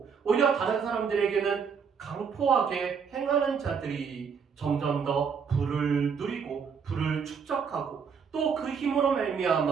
오히려 다른 사람들에게는 강포하게 행하는 자들이 점점 더 부를 누리고 부를 축적하고 또 그 힘으로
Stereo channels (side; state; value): left; quieter; 6.3 dB